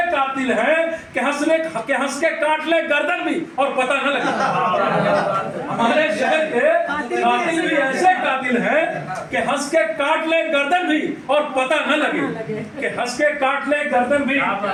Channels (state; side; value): identical; both; correlation 1.00